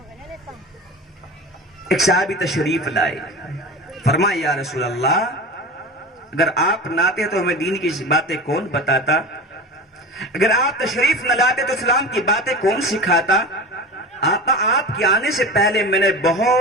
ایک صحابی تشریف لائے، فرمایا یا رسول اللہ، اگر آپ نہ آتے تو ہمیں دین کی باتیں کون بتاتا؟ اگر آپ تشریف نہ لاتے تو اسلام کی باتیں کون سکھاتا؟ آقا آپ کے آنے سے پہلے میں نے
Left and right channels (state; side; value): normal; both; correlation 0.31